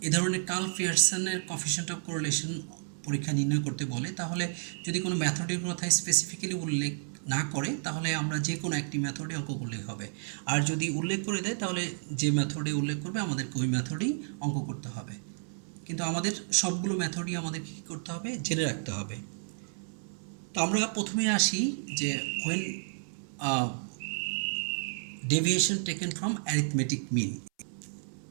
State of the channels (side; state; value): left; silent; 57 dB below the other